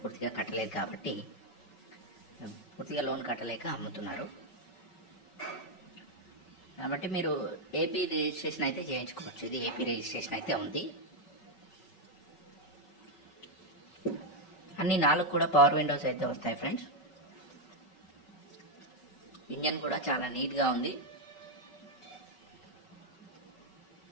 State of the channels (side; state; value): right; late; 5.3 ms